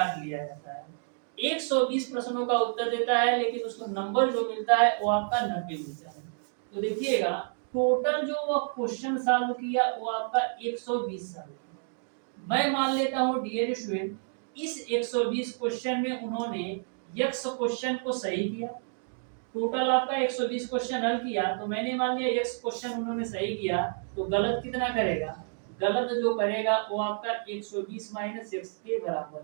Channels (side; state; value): left; silent; digital silence